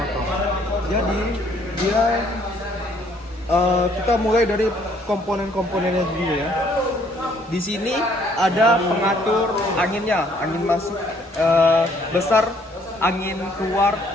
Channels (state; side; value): normal; both; correlation 0.63